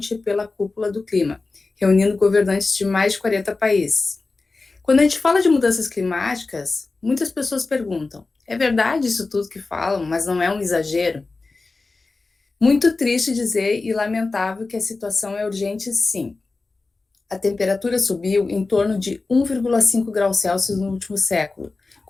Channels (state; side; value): quieter; right; 3.7 dB